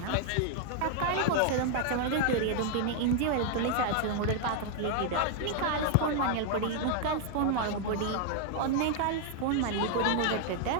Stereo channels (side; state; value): both; different; correlation 0.00